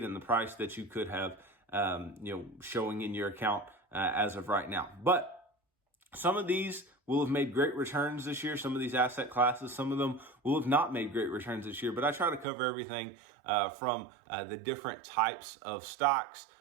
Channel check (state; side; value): drops out; left; at 12.5 s